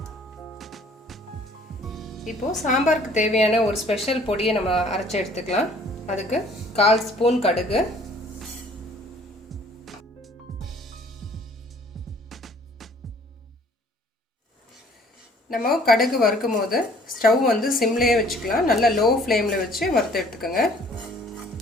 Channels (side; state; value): both; normal; correlation 0.56